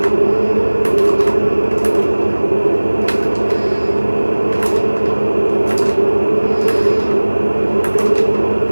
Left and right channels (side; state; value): both; inverted; correlation -1.00